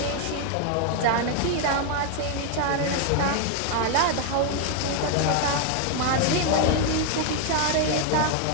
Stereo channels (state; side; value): different; both; correlation 0.00